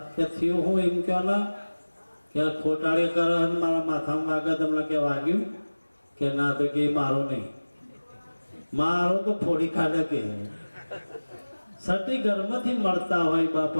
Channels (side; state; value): both; inverted; correlation -1.00